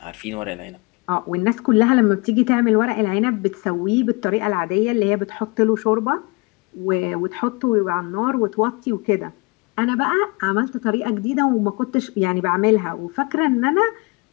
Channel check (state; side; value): quieter; right; 28.0 dB